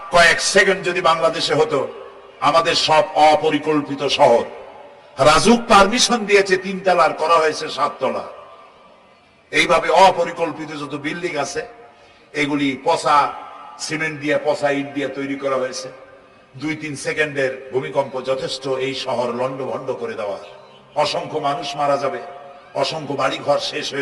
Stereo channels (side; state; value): both; identical; correlation 1.00